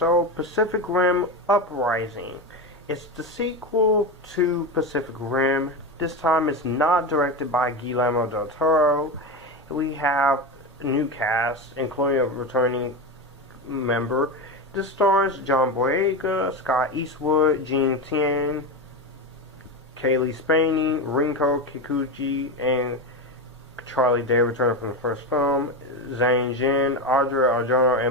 Pacific Rim Uprising. It's the sequel to Pacific Rim. This time it's not directed by Guillermo del Toro. We have a new cast, including a returning member. This stars John Boyega, Scott Eastwood, Jing, Tian, Cailee, Spaeny, Rinko, Kikuchi, and Charlie Day returning from the first film. Zhang, Adria, Arjona,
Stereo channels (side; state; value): both; normal; correlation 0.18